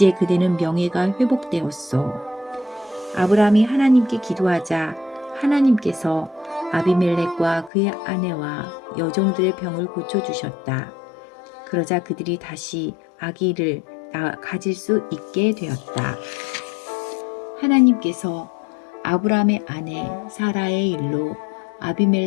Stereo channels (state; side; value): drops out; right; at 7.7 s